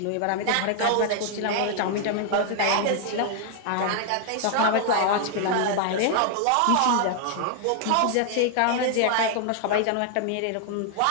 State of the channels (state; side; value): different; both; correlation 0.00